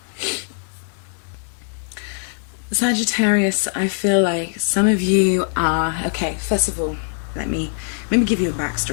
Sagittarius, I feel like some of you are... Okay, first of all, let me give you a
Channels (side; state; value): right; silent; digital silence